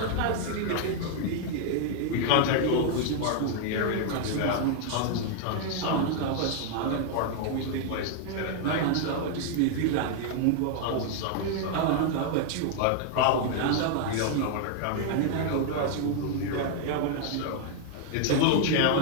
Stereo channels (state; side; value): different; both; correlation 0.00